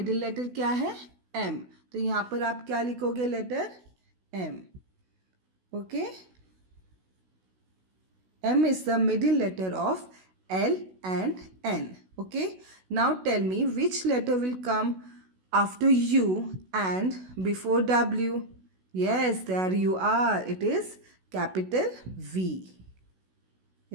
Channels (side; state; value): left; late; 16 ms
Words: लेटर क्या है? M. तो यहाँ पर आप क्या लिखोगे? Letter M. Okay. M is the middle letter of L and N. Okay. Now tell me which letter will come after U and before W. Yes, there you are. It is capital V.